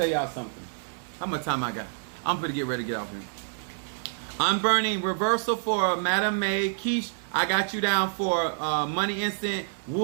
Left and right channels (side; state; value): left; silent; 60 dB below the other